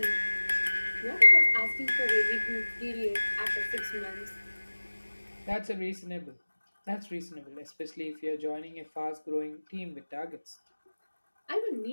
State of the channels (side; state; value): both; inverted; correlation -1.00